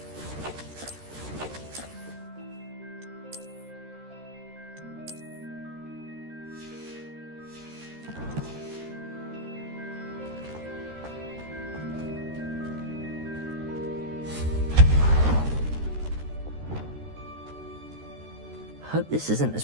Hope this isn't as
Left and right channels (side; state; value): left; late; 13 ms